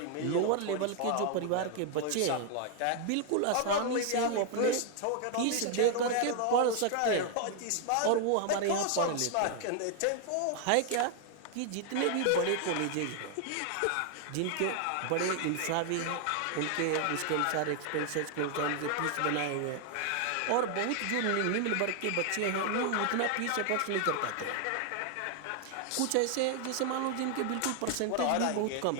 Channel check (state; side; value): different; both; correlation 0.00